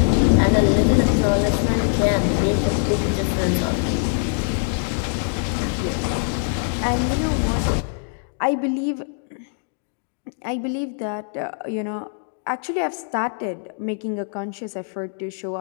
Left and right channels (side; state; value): right; silent; digital silence